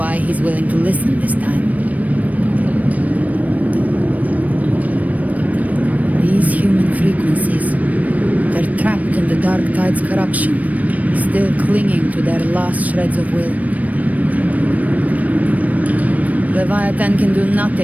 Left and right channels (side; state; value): left; late; 0.071 ms